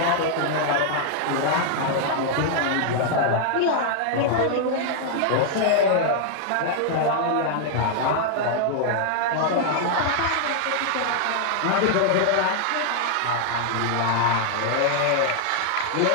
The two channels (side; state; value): both; different; correlation 0.00